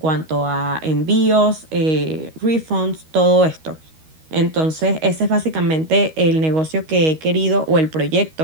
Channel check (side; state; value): left; late; 13 ms